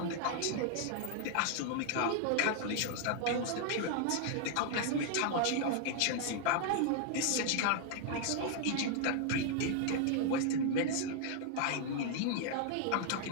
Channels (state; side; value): different; both; correlation 0.00